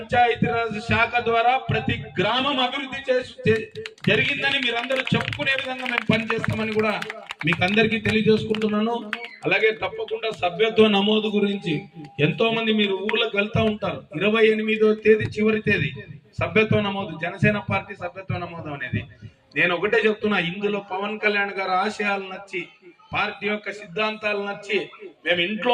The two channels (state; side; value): identical; both; correlation 1.00